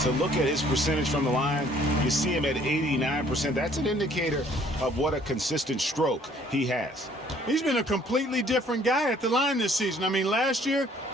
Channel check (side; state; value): both; normal; correlation 0.59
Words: look at his percentage from the line, you see him at 89%. That's an indicator of what a consistent stroke he has. He's been a completely different guy at the line this season. I mean, last year,